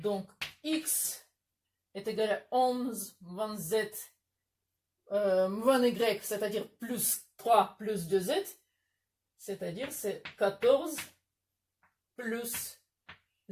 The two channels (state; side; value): identical; both; correlation 1.00